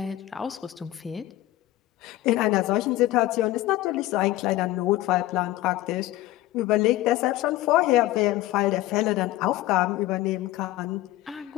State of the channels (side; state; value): right; quieter; 16.1 dB